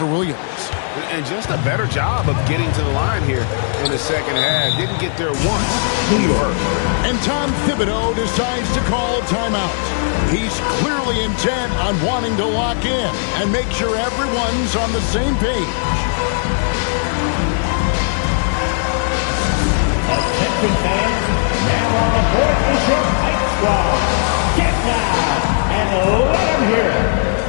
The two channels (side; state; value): right; silent; digital silence